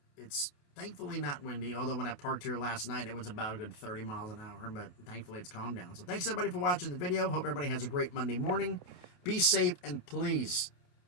It's thankfully not windy, although when I parked here last night, it was about a good 30 miles an hour, but thankfully it's calmed down. So thanks everybody for watching the video. Hope everybody has a great Monday morning. Be safe, and please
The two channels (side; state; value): right; late; 28 ms